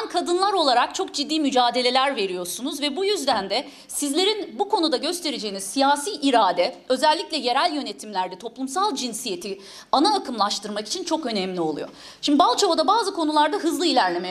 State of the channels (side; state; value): both; identical; correlation 1.00